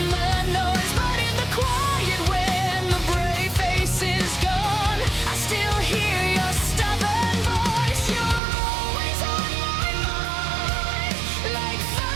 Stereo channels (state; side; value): drops out; left; at 8.4 s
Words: the noise, but in the quiet when the brave face is gone, I still hear your stubborn voice. You're always on my mind, like